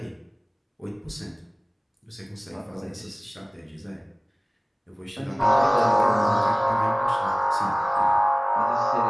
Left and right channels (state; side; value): identical; both; correlation 1.00